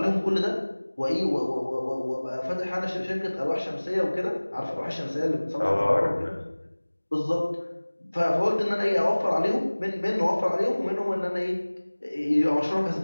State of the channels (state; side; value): inverted; both; correlation -1.00